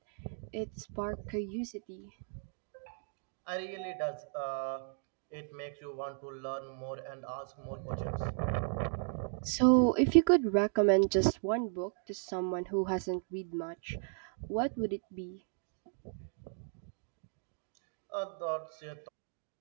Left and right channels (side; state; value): left; silent; 54 dB below the other